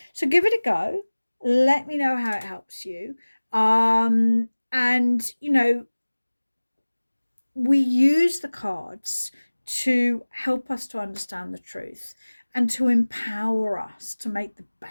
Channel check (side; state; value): both; inverted; correlation -1.00